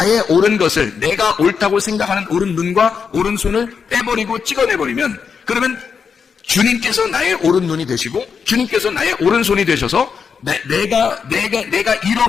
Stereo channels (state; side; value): quieter; right; 6.1 dB